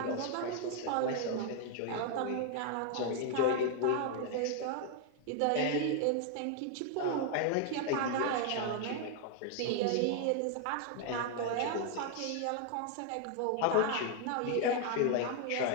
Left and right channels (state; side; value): different; both; correlation 0.00